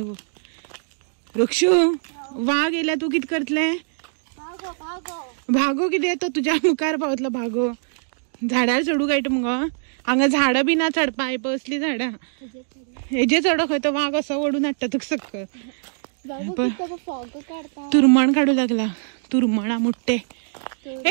रक्षू वाघ येयल्या तूं कितें करतलें. भागो कितें तो तुज्या मुखार पावतलो भागो. झाडार चडू कळटा मुगो. हांगा झाडां बी ना चडपा आयप असली झाडां. हेजे चडो खंय तो वाघ असो ओडून हाडटा तुका सकयल. तुरमण काडू लागला. तुरमणा मुट्टे.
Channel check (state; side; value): silent; left; digital silence